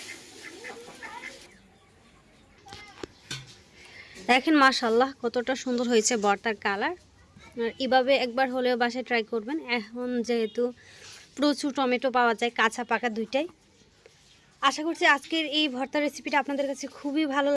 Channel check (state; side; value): identical; both; correlation 1.00